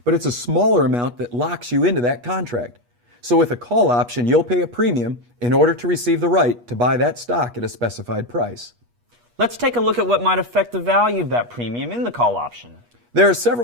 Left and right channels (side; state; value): left; late; 8.3 ms